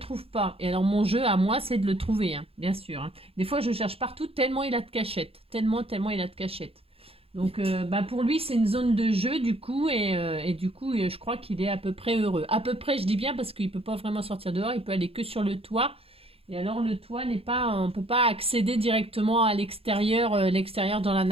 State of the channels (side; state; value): left; late; 0.28 ms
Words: pas. Et alors mon jeu à moi c'est de le trouver, hein, bien sûr. Hein. Des fois je cherche partout tellement il a de cachettes. Tellement il a de cachettes. Donc pour lui c'est une zone de jeu du coup et du coup je crois qu'il est à peu près heureux. À peu près je dis bien parce qu'il ne peut pas vraiment sortir dehors, il peut aller que sur le toit. Et alors le toit n'est pas, on ne peut pas accéder directement à l'extérieur, l'extérieur dans la